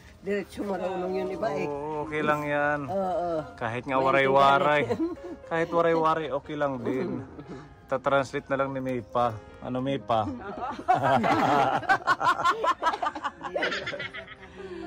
diretso marunong yun iba eh. Oo, okay lang yan. Oo. Kahit nga waray-waray. Kahit waray-waray, okay lang din. Ta-translate na lang ni Maypa. Ano Maypa?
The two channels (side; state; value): both; identical; correlation 1.00